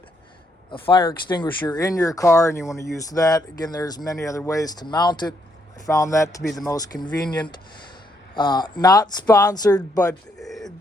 a fire extinguisher in your car and you want to use that. Again, there's many other ways to mount it. I found that to be the most convenient. Not sponsored, but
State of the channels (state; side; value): normal; both; correlation 0.74